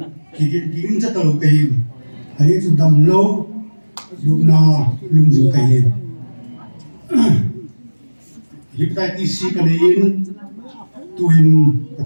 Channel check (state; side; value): inverted; both; correlation -1.00